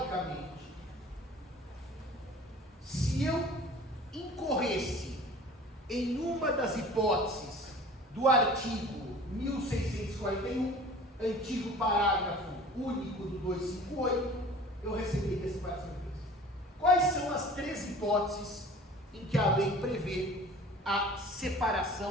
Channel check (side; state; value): both; normal; correlation 0.45